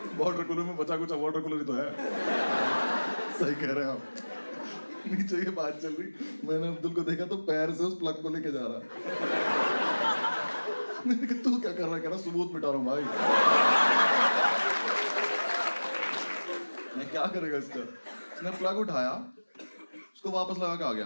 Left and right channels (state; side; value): inverted; both; correlation -1.00